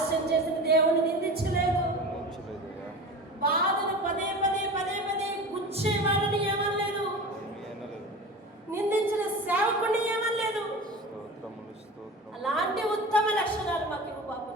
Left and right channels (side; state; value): both; normal; correlation 0.33